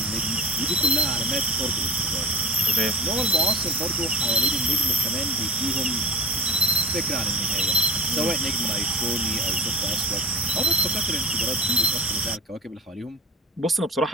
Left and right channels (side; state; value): both; normal; correlation 0.39